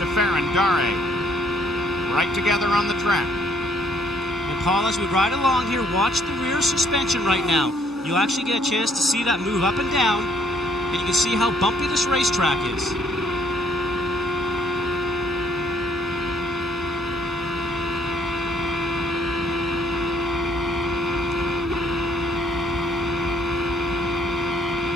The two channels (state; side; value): normal; both; correlation 0.65